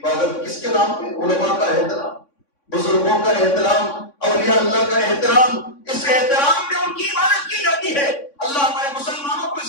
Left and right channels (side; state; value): right; late; 3.6 ms